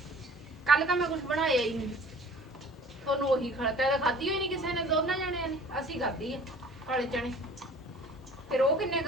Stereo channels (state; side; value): normal; both; correlation 0.48